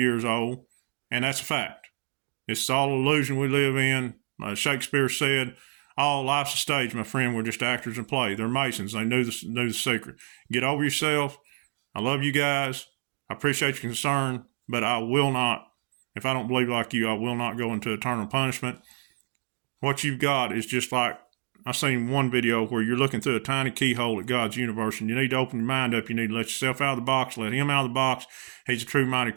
old. And that's a fact. It's all illusion we live in. Shakespeare said, all life's a stage, my friend. We're just actors in play. They're Masons. They knew the secret. Get over yourself. I love you guys. I appreciate your concern, but I will not, if I don't believe like you, I will not go into eternal punishment. What you've got is just like, I seen one video where you're looking through a tiny keyhole at God's universe, and you need to open your mind up. You need to let yourself out of the box, let him out of the box. He's a true mighty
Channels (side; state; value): left; silent; digital silence